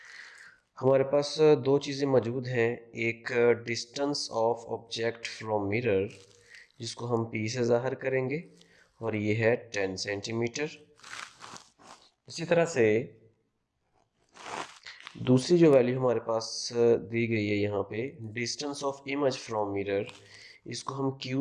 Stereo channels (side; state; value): both; identical; correlation 1.00